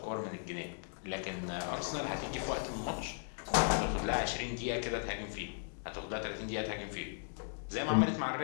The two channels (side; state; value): right; silent; digital silence